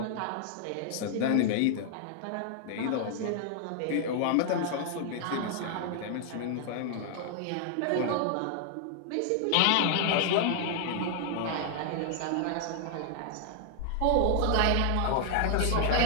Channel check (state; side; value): different; both; correlation 0.00